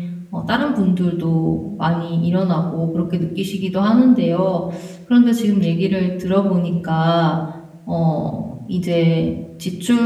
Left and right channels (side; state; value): both; identical; correlation 1.00